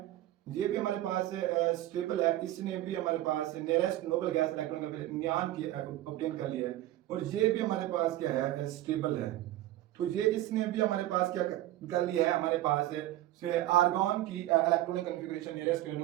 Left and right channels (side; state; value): left; quieter; 14.9 dB